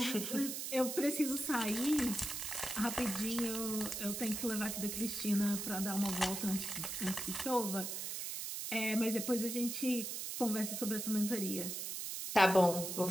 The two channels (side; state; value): right; noise; hiss, 4 dB below the sound